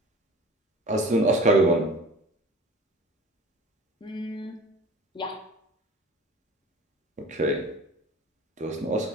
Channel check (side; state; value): both; normal; correlation 0.42